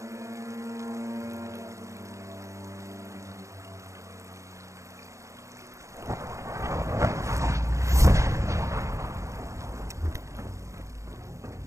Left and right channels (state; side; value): late; left; 0.15 ms